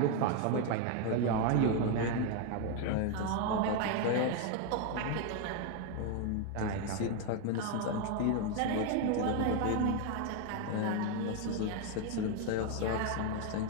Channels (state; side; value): different; both; correlation 0.01